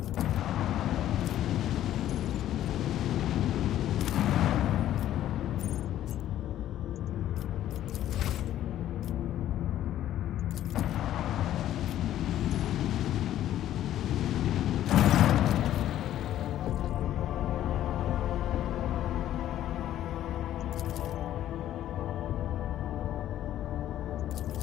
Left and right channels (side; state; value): right; quieter; 12.3 dB